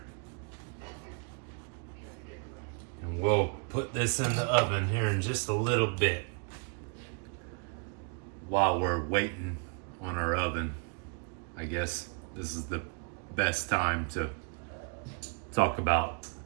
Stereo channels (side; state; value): left; quieter; 37.8 dB